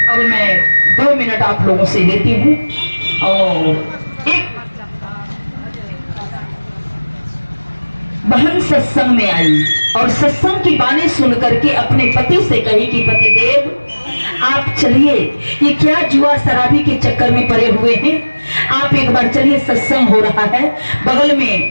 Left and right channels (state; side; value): inverted; both; correlation -1.00